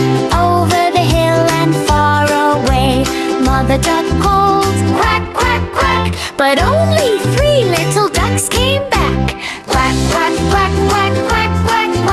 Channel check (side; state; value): both; identical; correlation 1.00